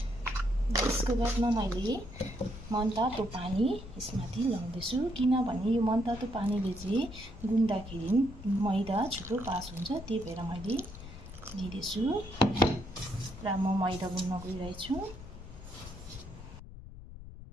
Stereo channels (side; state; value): left; noise; rumble, 14 dB below the sound